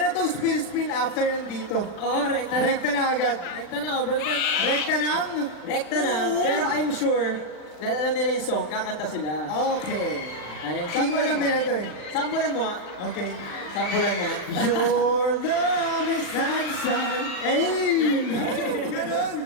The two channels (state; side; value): late; right; 40 ms